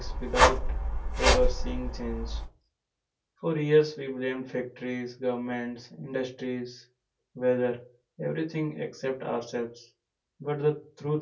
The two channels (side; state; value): both; identical; correlation 1.00